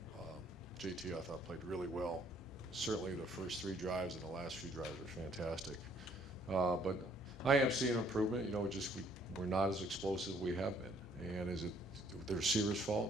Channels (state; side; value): normal; both; correlation 0.63